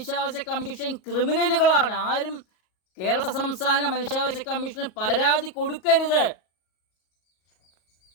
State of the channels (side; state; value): right; late; 38 ms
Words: കമ്മീഷൻ ക്രിമിനലുകളാണ്. ആരും കേരള സംസ്ഥാന മനുഷ്യാവകാശ കമ്മീഷന് പരാതി കൊടുക്കരുത്.